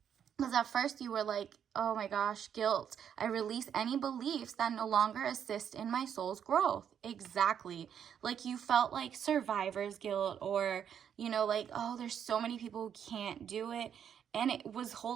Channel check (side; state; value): left; quieter; 8.5 dB